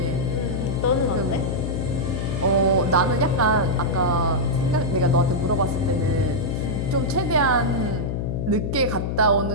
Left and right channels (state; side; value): noise; left; hum, 2 dB below the sound